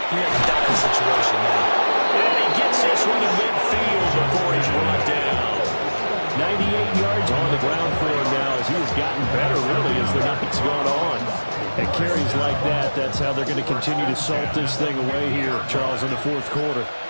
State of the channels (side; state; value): both; inverted; correlation -1.00